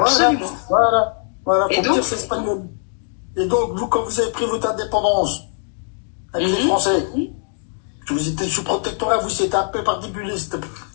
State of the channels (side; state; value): right; silent; 64 dB below the other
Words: Voilà, faut me dire c'est espagnol. Et donc, vous, quand vous avez pris votre indépendance avec les Français, que vous étiez sous protectorat, vous, c'était un peu particulier.